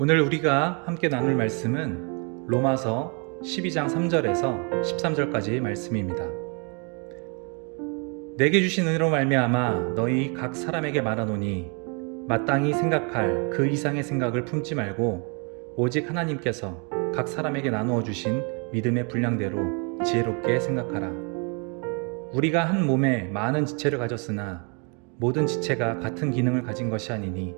오늘 우리가 함께 나눌 말씀은 로마서 12장 3절에서 13절까지 말씀입니다. 내게 주신 은혜로 말미암아 너희 각 사람에게 말하노니 마땅히 생각할 그 이상의 생각을 품지 말고 오직 하나님께서 각 사람에게 나누어 주신 믿음의 분량대로 지혜롭게 생각하라. 우리가 한 몸에 많은 지체를 가졌으나 모든 지체가 같은 기능을 가진 것이 아니니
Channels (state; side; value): quieter; left; 35.4 dB